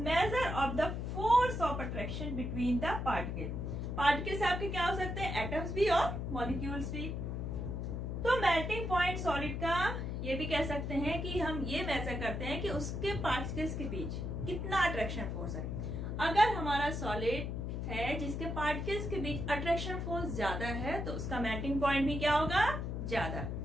of the force of attraction between the particle. Particles आपके क्या हो सकते हैं, एटम्स भी और मॉलिक्यूल्स भी। तो मेल्टिंग पॉइंट सॉलिड का ये भी कह सकते हैं कि हम ये मेजर करते हैं कि उसके पार्टिकल्स के बीच कितना अट्रैक्शन फोर्स है। अगर हमारा सॉलिड है जिसके पार्टिकल्स के बीच अट्रैक्शन फोर्स ज्यादा है तो उसका मेल्टिंग पॉइंट भी क्या होगा, ज्यादा।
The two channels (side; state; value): left; noise; hum, 3 dB below the sound